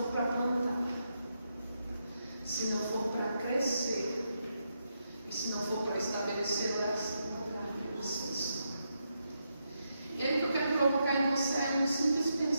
para plantar, se não for para crescer, e se não for para estabelecer oração no lugar que você está. E aí o que eu quero provocar em você é um simples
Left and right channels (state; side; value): inverted; both; correlation -0.83